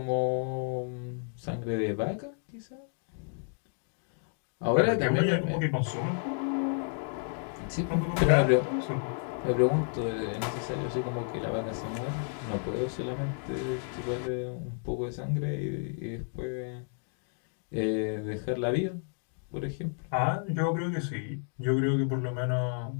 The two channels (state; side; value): silent; right; 57 dB below the other